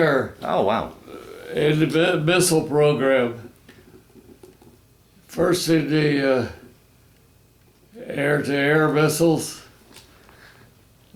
Oh, wow. In the missile program. First in the air-to-air missiles,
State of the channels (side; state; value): both; identical; correlation 1.00